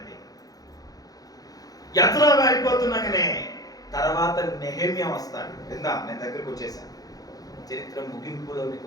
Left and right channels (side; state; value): right; late; 0.18 ms